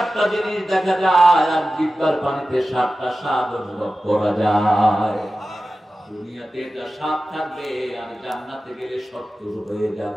জিনিস দেখা যায়, আর জিহ্বার পানিতে 7টা স্বাদ অনুভব করা যায়। দুনিয়াতে এটা 7 থাকবে, আর জান্নাতে গেলে 70 হয়ে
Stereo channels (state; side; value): normal; both; correlation 0.94